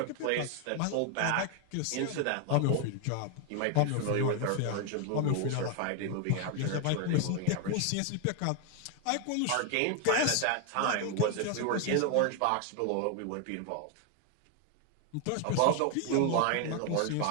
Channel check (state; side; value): different; both; correlation 0.01